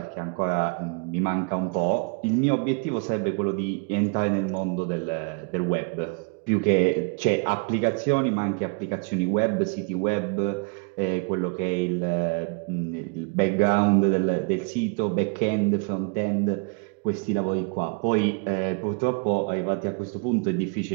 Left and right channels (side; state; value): left; quieter; 35.3 dB